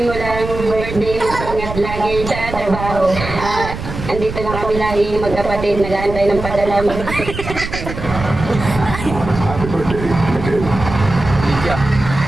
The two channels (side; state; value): right; noise; rumble, 8 dB below the sound